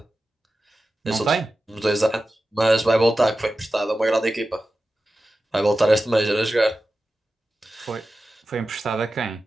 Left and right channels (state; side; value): normal; both; correlation 0.93